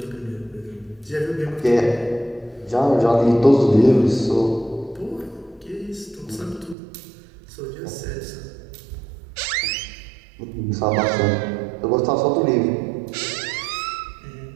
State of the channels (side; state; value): left; drops out; at 6.8 s